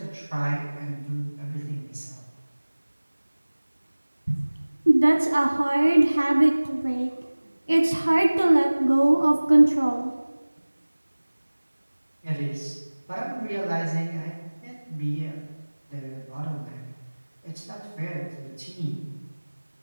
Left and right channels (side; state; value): both; inverted; correlation -1.00